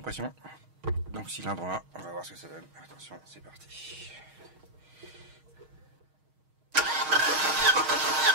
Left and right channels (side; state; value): left; late; 6.4 ms